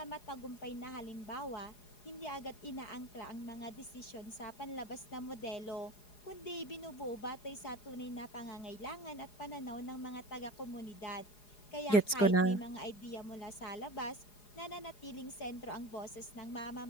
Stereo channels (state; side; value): late; right; 4.8 ms